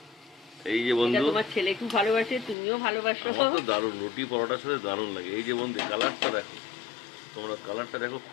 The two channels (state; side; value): drops out; right; at 2.6 s